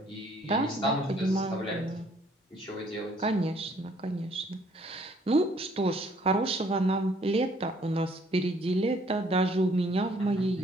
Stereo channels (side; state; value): both; normal; correlation 0.62